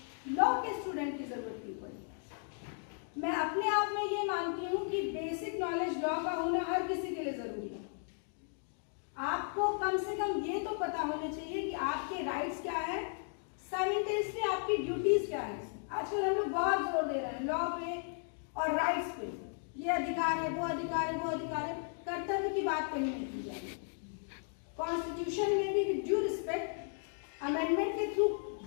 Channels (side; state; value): right; silent; 54 dB below the other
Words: लॉ के स्टूडेंट की जरूरत क्यों पड़ी? मैं अपने आप में ये मानती हूँ कि बेसिक नॉलेज लॉ का होना हर किसी के लिए जरूरी है। आपको कम से कम ये तो पता होना चाहिए कि आपके राइट्स क्या है, साइमल्टेनियसली आपकी ड्यूटीज क्या है। आजकल हम लोग बहुत जोर दे रहे हैं लॉ पे और राइट्स पे, ये अधिकार है, वो अधिकार है, वो अधिकार है, कर्तव्य की बात कहीं नहीं की जाएगी। कॉन्स्टिट्यूशन में भी विद ड्यू रिस्पेक्ट अमेंडमेंट के थ्रू